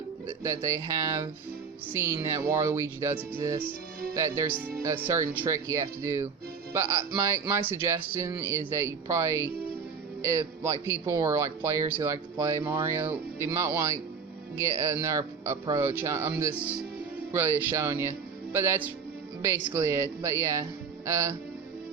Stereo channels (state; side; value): quieter; left; 5.9 dB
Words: seen that Waluigi does exist, that there's a certain trick you have to do. But my suggestion is that you probably, if like people or like players who like to play Mario, they might want to get another approach. I'm just really showing you. But that's basically it. But yeah,